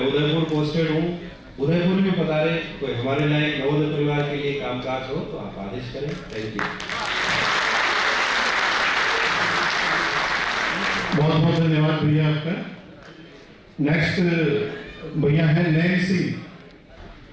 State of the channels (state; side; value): identical; both; correlation 1.00